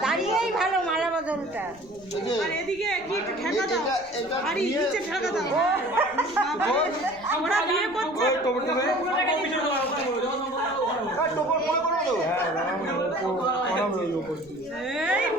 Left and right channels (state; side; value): noise; right; rumble, 26 dB below the sound